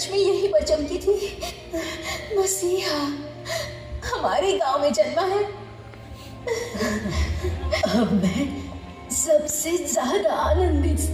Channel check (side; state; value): both; identical; correlation 1.00